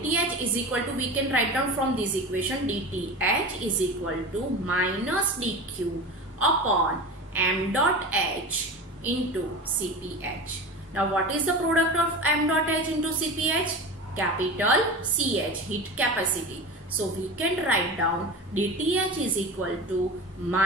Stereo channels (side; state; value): both; normal; correlation 0.29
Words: is equal to, we can write down from this equation, dTh is equal to minus dq upon m dot h into Cph. Now what is the product of m dot h into Cph? Capital CH, heat capacity. So we can write down dTh is equal to